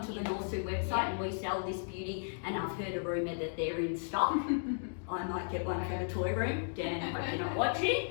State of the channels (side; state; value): right; silent; digital silence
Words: the Norsu website and we sell this beauty, and I've heard a rumour that they're in stock. I might get one for the toy room. Dan, I hope you're not